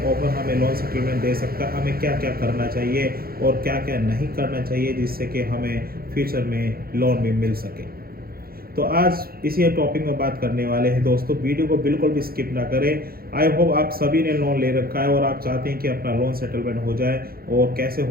ऑफर हमें लोन सेटलमेंट दे सकता है, हमें क्या क्या करना चाहिए और क्या क्या नहीं करना चाहिए, जिससे कि हमें फ्यूचर में लोन भी मिल सके। तो आज इसी टॉपिक में बात करने वाले हैं दोस्तों। वीडियो को बिल्कुल भी स्किप ना करें। आई होप आप सभी ने लोन ले रखा है और आप चाहते हैं कि अपना लोन सेटलमेंट हो जाए, और कैसे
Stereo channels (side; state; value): left; late; 0.44 ms